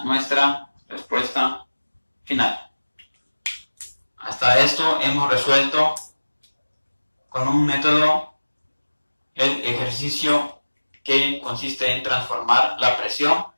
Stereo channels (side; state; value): both; inverted; correlation -1.00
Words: nuestra respuesta final. Hasta esto hemos resuelto con un método el ejercicio que consiste en transformar la presión